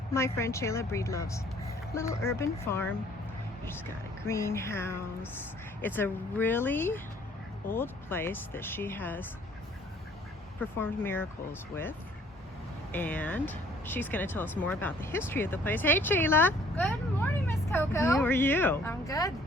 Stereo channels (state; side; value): normal; both; correlation 0.58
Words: my friend Cheyla Breedlove's little urban farm. She's got a greenhouse. It's a really old place that she has performed miracles with, and she's going to tell us more about the history of the place. Hey Cheyla! Good morning, Miss Coco. How are you? I'm good.